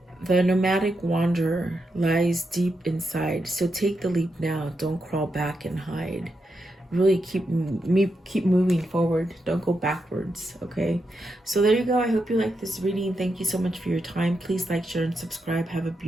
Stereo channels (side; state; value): both; normal; correlation 0.85